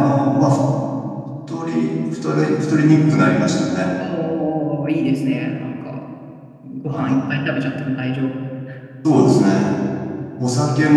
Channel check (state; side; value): identical; both; correlation 1.00